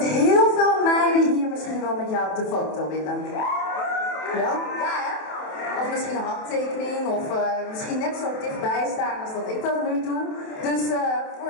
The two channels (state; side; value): late; right; 27 ms